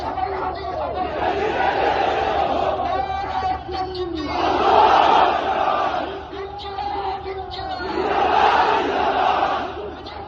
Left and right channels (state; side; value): identical; both; correlation 1.00